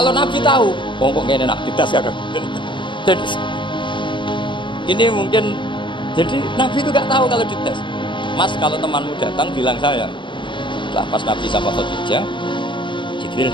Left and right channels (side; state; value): right; late; 0.23 ms